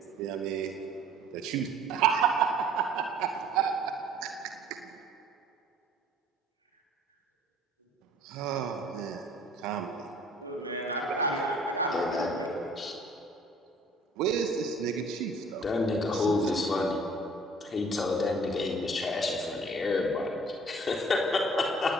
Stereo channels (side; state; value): both; normal; correlation 0.54